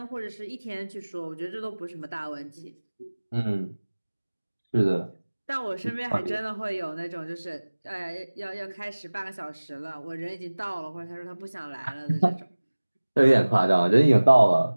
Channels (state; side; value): inverted; both; correlation -1.00